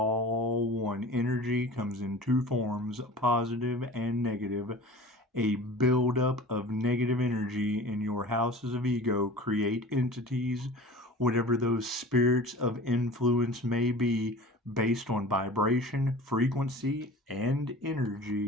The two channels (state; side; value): normal; both; correlation 0.39